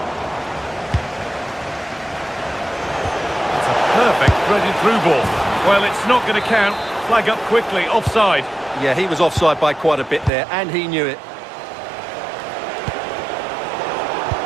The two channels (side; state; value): left; drops out; at 10.3 s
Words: Perfect threaded through ball. Well, it's not going to count. Flag up quickly, offside. Yeah, he was offside by quite a bit there, and he knew it.